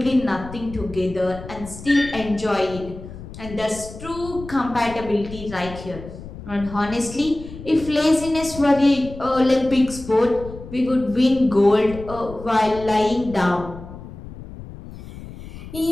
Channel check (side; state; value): left; noise; rumble, 14 dB below the sound